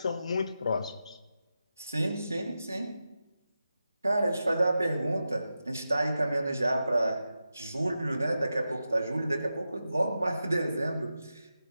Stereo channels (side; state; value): both; inverted; correlation -0.90